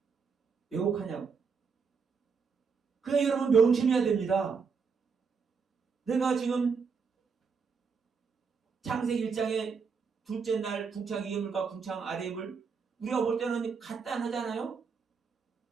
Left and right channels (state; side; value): quieter; left; 5.6 dB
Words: 왜곡하냐고. 그러니까 여러분 명심해야 됩니다. 내가 지금 창세기 1장의 둘째 날 궁창 위에 물과 궁창 아래의 물, 우리가 볼 때는 간단하잖아요.